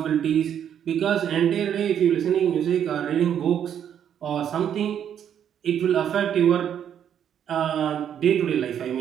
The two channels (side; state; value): left; quieter; 9.2 dB